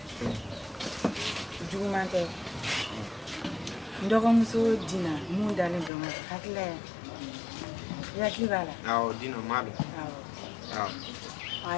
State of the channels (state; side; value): drops out; right; at 5.9 s